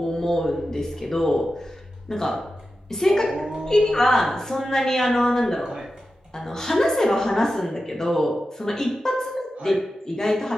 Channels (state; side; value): normal; both; correlation 0.92